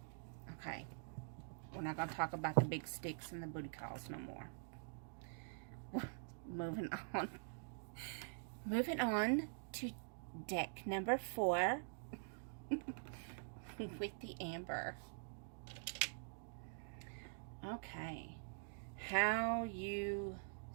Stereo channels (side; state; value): left; silent; digital silence